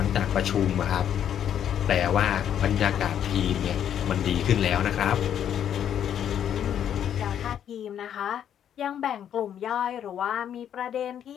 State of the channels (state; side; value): quieter; right; 9.6 dB